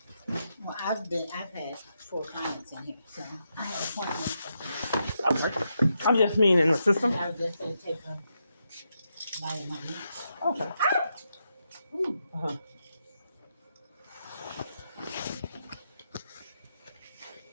Well, I've had 4 clients in here, so I have appointments. I'm just mean in the system. I was just gonna take a bite of my lunch. Okay. Ooh. Uh-huh.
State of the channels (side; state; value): both; inverted; correlation -0.83